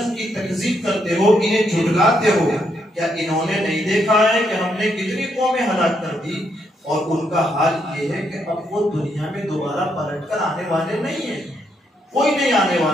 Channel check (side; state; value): both; normal; correlation 0.76